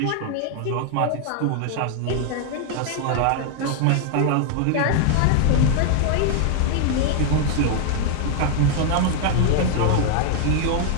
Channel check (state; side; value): different; both; correlation 0.00